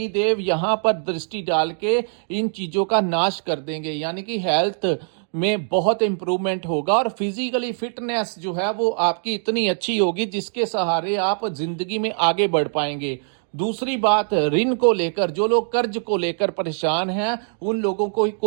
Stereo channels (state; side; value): silent; left; digital silence